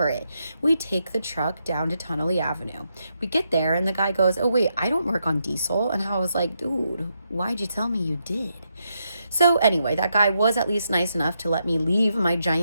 it. We take the truck down to Tunnelly Avenue. We get there and the guy goes, oh wait, I don't work on diesel. And I was like, dude, why'd you tell me you did? So anyway, that guy was at least nice enough to let me leave my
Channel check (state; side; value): inverted; both; correlation -0.81